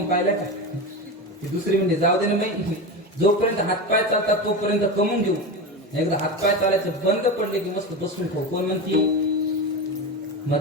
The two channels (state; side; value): normal; both; correlation 0.21